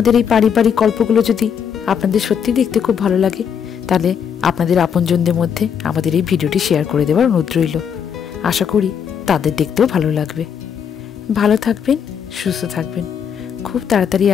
এই পারিবারিক গল্পগুলো যদি আপনাদের সত্যি দেখতে খুব ভালো লাগে, তাহলে আপনাদের আপনজনদের মধ্যে আমাদের এই ভিডিওটি শেয়ার করে দেওয়ার অনুরোধ রইল। আশা করি তাদের দেখতেও ভালো লাগবে। ভালো থাকবেন, সুস্থ থাকবেন। খুব তাড়াতাড়ি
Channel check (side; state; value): right; quieter; 7.6 dB